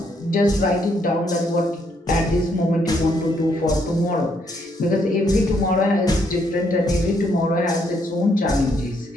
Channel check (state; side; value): normal; both; correlation 0.72